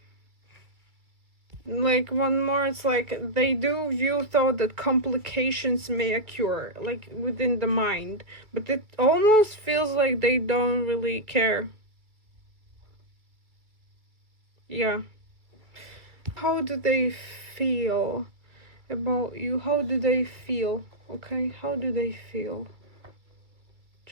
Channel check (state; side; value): late; left; 2.3 ms